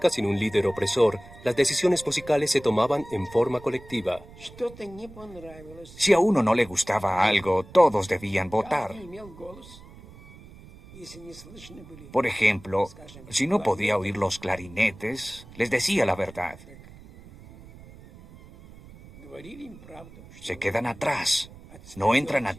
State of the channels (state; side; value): noise; right; rumble, 20 dB below the sound